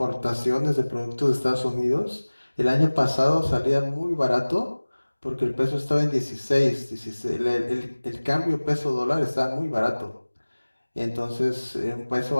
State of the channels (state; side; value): inverted; both; correlation -1.00